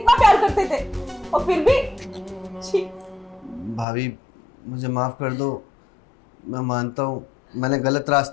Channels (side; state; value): right; drops out; at 3.9 s